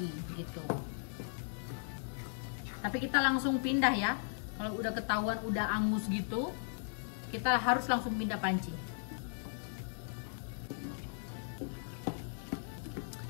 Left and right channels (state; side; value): silent; right; digital silence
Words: gitu. Tapi kita langsung pindah ya. Kalau udah ketahuan udah angus gitu, kita harus langsung pindah panci.